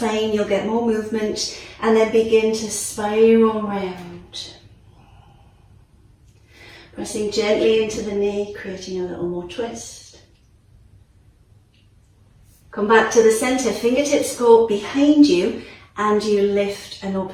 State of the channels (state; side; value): identical; both; correlation 1.00